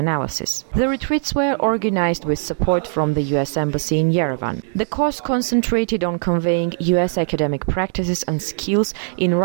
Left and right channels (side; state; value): left; silent; 66 dB below the other